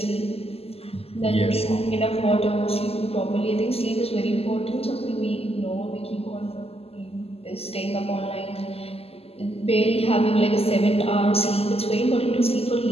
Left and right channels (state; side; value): late; right; 0.29 ms